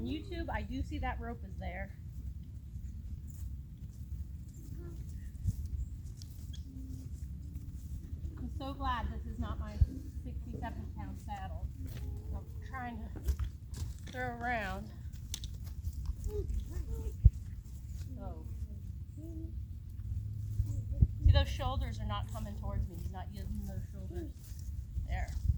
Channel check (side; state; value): both; identical; correlation 1.00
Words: YouTube, I do see that rope is there. I'm so glad this is not my 67-pound saddle. I'm trying to throw around. So, see, those shoulders are not coming towards me. He's not using those shoulders. There.